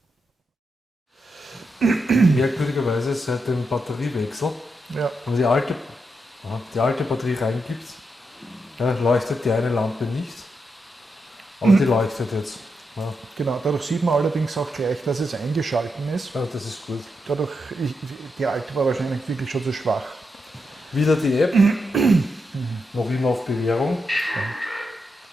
Merkwürdigerweise seit dem Batteriewechsel, also die alte die alte Batterie reingibt, ja, leuchtet die eine Lampe nicht, aber die leuchtet jetzt. Ja. Genau, dadurch sieht man allerdings auch gleich, dass es eingeschalten ist. Ja, das ist gut. Dadurch, die alte war wahrscheinlich wirklich schon zu schwach. Wieder die App, noch immer auf Bewährung,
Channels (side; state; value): both; normal; correlation 0.84